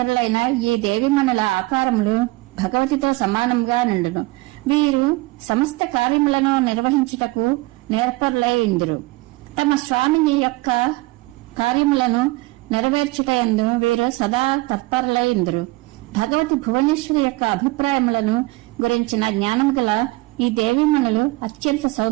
ఈ దేవిమణుల ఆకారములు భగవతితో సమానంగా నుండును. వీరు సమస్త కార్యములను నిర్వహించుటకు నేర్పరులై ఉందురు. తమ స్వామిని యొక్క కార్యములను నెరవేర్చుటయందు వీరు సదా తత్పరులై ఉందురు. భగవతి భువనేశ్వరి యొక్క అభిప్రాయములను గురించిన జ్ఞానం గల ఈ దేవీమణులు అత్యంత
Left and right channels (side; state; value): left; quieter; 21.8 dB